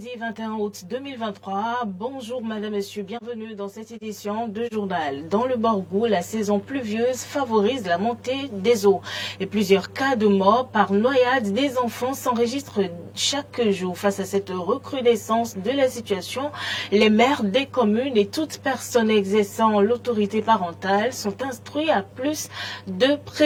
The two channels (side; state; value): both; identical; correlation 1.00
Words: 21 août 2023. Bonjour madame, messieurs, bienvenue dans cette édition de journal. Dans le Borgou, la saison pluvieuse favorise la montée des eaux et plusieurs cas de mort par noyade des enfants s'enregistrent chaque jour. Face à cette recrudescence de la situation, les maires des communes et toute personne exerçant l'autorité parentale sont instruits à plus de